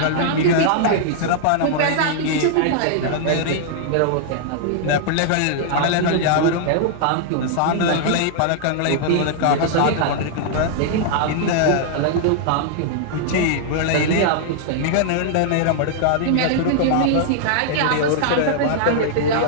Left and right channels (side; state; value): both; different; correlation -0.01